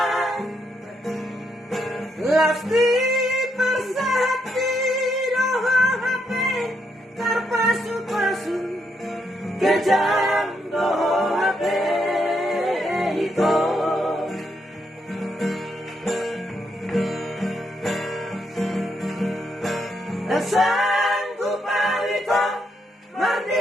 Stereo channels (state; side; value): normal; both; correlation 0.78